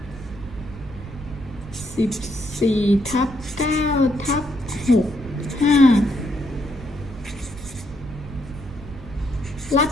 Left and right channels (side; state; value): right; noise; rumble, 14 dB below the sound